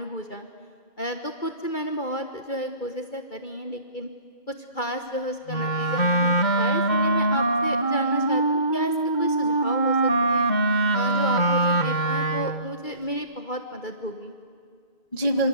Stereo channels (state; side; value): late; right; 2.3 ms